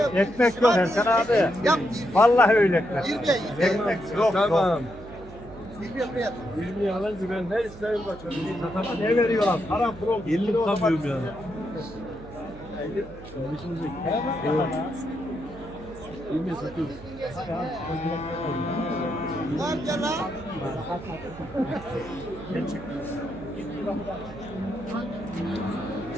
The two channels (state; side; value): noise; right; hum, 17 dB below the sound